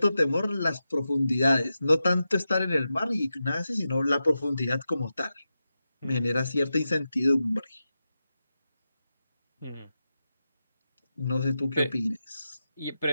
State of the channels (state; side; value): inverted; both; correlation -0.91